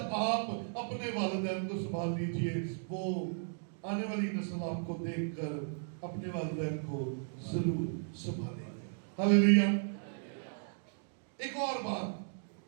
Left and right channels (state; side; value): silent; left; digital silence